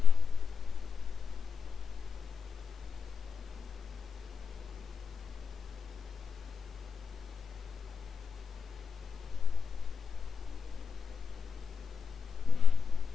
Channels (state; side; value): quieter; right; 5.8 dB